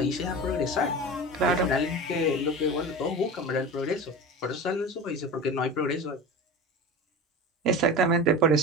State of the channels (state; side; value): normal; both; correlation 0.30